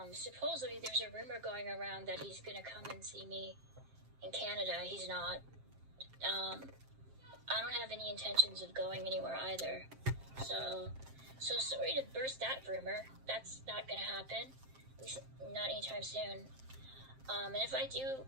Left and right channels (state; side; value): late; left; 7.6 ms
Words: Supposedly there's a rumor going around that he's gonna come and see me in Canada. He's not. I don't have any intentions of going anywhere either. So sorry to burst that rumor. That's not gonna happen. At least not anytime soon. And if I do